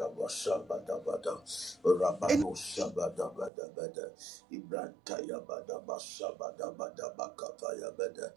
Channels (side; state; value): left; drops out; at 3.5 s